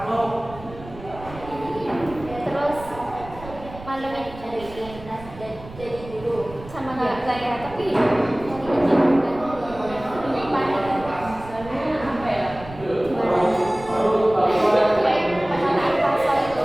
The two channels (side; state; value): right; noise; rumble, 16 dB below the sound